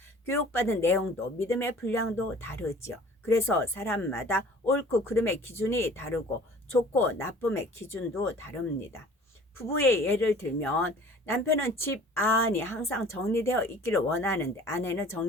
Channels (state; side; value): normal; both; correlation 0.48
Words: 교육받은 내용도 믿음의 분량도 다르지요. 그래서 사람마다 옳고 그름의 기준이 다르고 좋고 나쁨의 기준도 다릅니다. 부부의 예를 들면 남편은 집 안이 항상 정리되어 있기를 원하는데 아내는